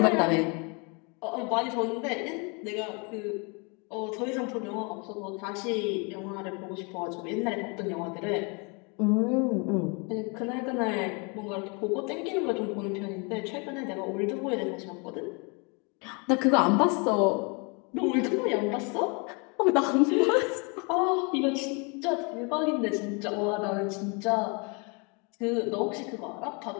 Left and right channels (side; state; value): right; quieter; 32.5 dB